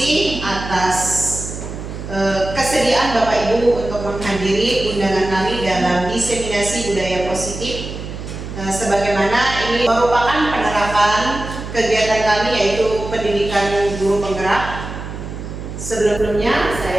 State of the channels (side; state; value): right; noise; hum, 9 dB below the sound